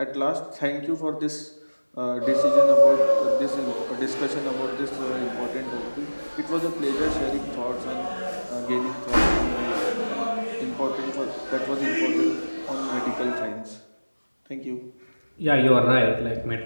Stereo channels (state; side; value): inverted; both; correlation -1.00